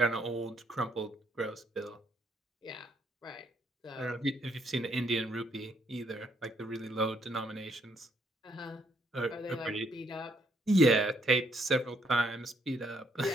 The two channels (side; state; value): both; normal; correlation 0.71